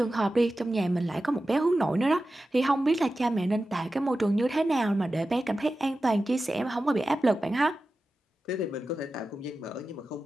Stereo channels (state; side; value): normal; both; correlation 0.93